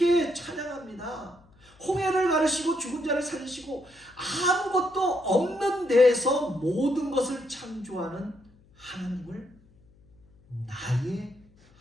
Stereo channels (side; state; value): left; noise; hum, 29 dB below the sound